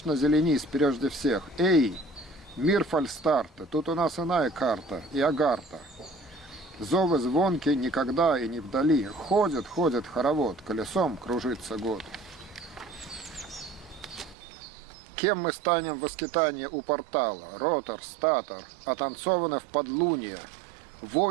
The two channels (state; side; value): drops out; left; at 14.4 s